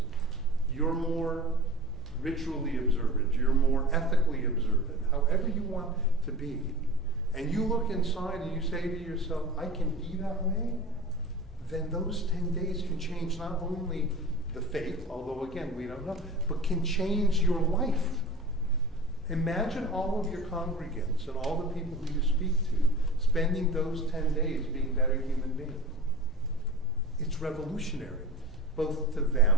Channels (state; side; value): normal; both; correlation 0.34